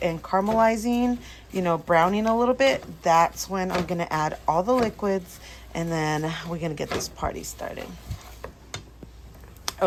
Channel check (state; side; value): identical; both; correlation 1.00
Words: and caramelizing, you know, browning a little bit, that's when I'm gonna add all the liquids, and then we're gonna get this party started.